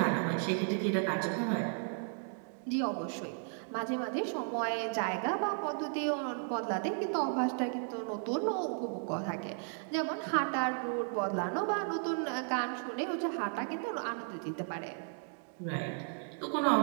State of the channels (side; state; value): left; silent; 55 dB below the other